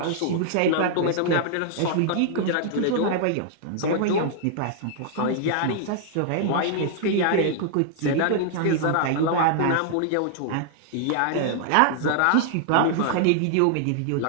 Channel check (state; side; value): different; both; correlation -0.01